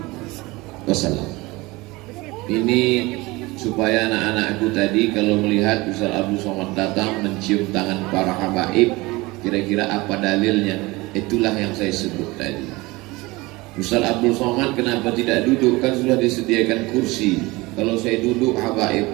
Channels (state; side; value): quieter; left; 22.1 dB